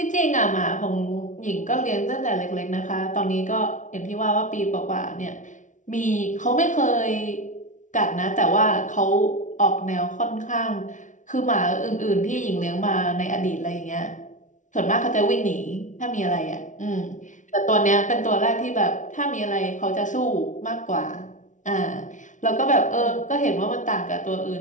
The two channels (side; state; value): right; late; 0.37 ms